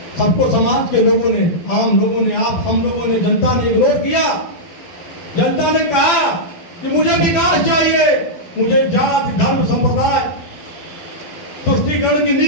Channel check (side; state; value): right; late; 12 ms